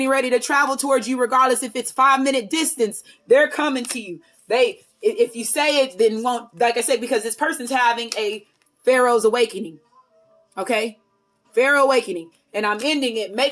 ready to travel towards you, regardless if it's 5-minute distance. They're coming to you. If you say it, then won't, like I said, because this person's having a Pharaoh's awakening. Okay? Pharaoh awakening. And I'm ending it.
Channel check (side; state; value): both; identical; correlation 1.00